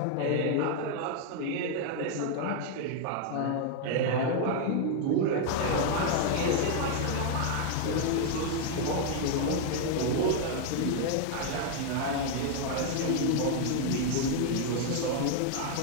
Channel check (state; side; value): different; both; correlation 0.00